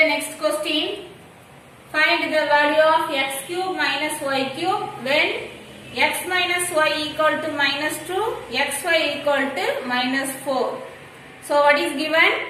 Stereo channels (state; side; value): identical; both; correlation 1.00